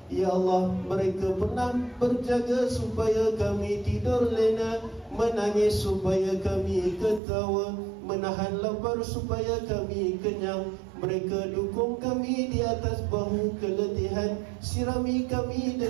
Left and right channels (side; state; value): left; drops out; at 7.2 s